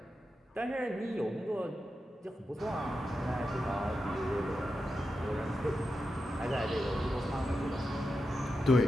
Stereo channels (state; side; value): normal; both; correlation 0.89